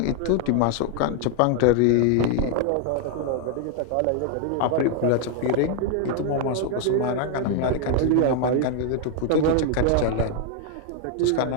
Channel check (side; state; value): both; different; correlation 0.00